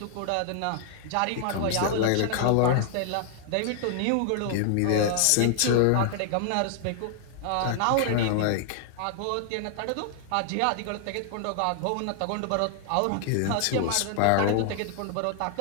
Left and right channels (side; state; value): both; different; correlation 0.00